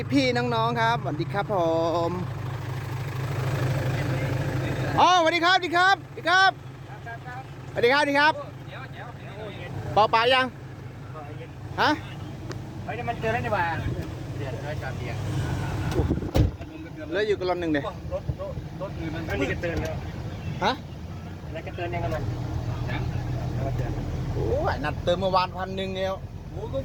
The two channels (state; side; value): identical; both; correlation 1.00